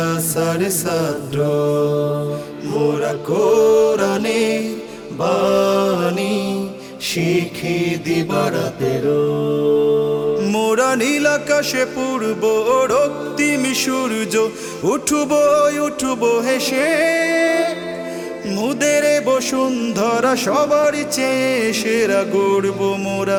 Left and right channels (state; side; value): identical; both; correlation 1.00